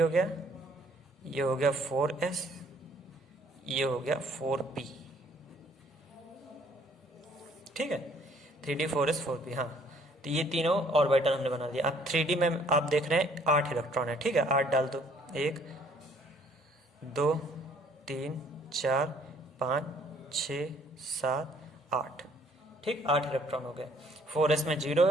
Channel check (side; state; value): both; normal; correlation 0.61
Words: हो गया, ये हो गया 4s, ये हो गया 4p, ठीक है। 3d 4s 4p, हाँ। तो ये तीनों ऑर्बिटल हमने बना दिया। अब 3d में आप देख रहे हैं 8 इलेक्ट्रॉन है, ठीक है। 8 डाल दो, 1 2 3 4 5 6 7 8, ठीक, 8 इलेक्ट्रॉन हो गए। 4s में 0